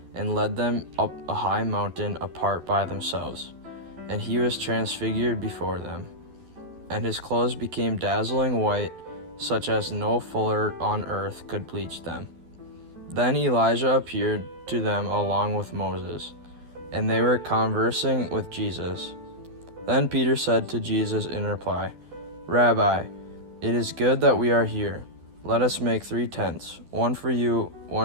and led them up a high mountain apart by themselves. And he was transfigured before them, and his clothes became dazzling white, such as no fuller on earth could bleach them. Then Elijah appeared to them along with Moses, and they were conversing with Jesus. Then Peter said to Jesus in reply, "Rabbi, it is good that we are here. Let us make 3 tents, one for you,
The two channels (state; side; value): late; left; 12 ms